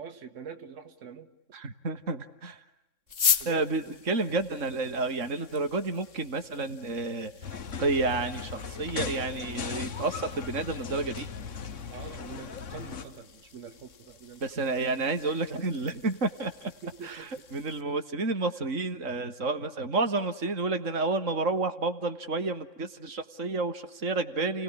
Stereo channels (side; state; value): left; late; 3.6 ms